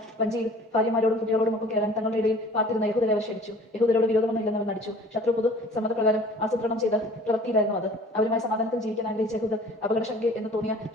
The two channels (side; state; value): both; normal; correlation 0.49